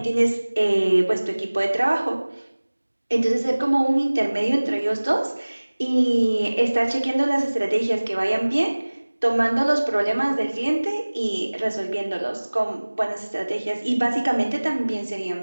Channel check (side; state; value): both; inverted; correlation -1.00